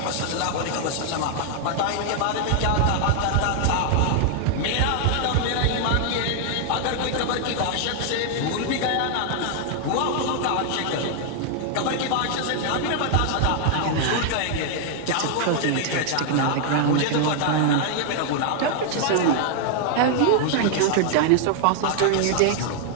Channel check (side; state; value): both; different; correlation 0.00